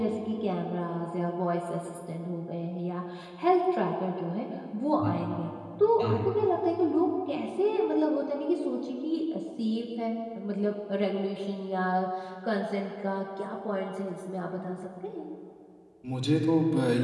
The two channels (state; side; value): identical; both; correlation 1.00